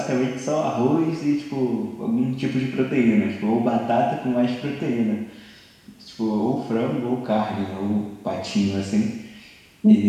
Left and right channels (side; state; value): both; identical; correlation 1.00